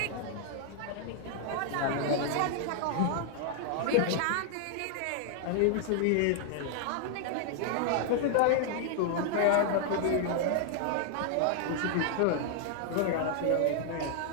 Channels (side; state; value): both; different; correlation 0.00